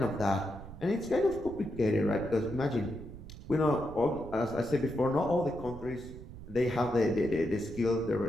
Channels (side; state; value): right; noise; rumble, 13 dB below the sound